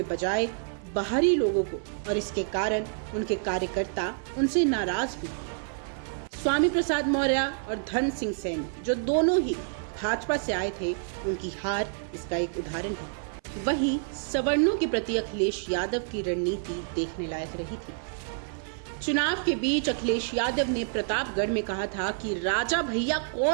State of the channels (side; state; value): left; silent; 55 dB below the other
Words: बजाय बाहरी लोगों को, और इसके कारण उनके कार्यकर्ता उनसे नाराज भी हुए। स्वामी प्रसाद मौर्य और धर्म सिंह सैनी, जो दोनों ही भाजपा से आए थे, उनकी हार इसका एक उदाहरण है। वहीं सवर्णों के प्रति अखिलेश यादव की रणनीति देखने लायक रही थी। चुनाव के बीच अखिलेश यादव ने प्रतापगढ़ में कहा था कि राजा भैया